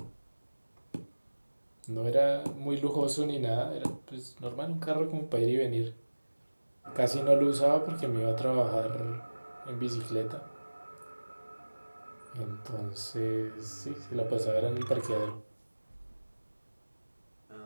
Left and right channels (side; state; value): both; inverted; correlation -1.00